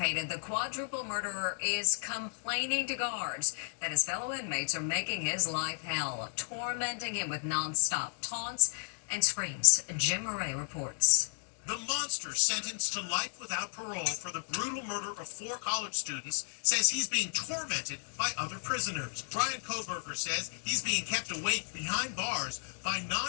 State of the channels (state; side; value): silent; right; digital silence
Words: The quadruple murderer is complaining to guards that his fellow inmates are making his life hell, tormenting him with nonstop taunts and screams. Jim Murray reports. The monster sentenced to life without parole for the brutal murder of 4 college students says he's being tormented by other prisoners. Bryan Kohberger says he's being kept awake behind bars by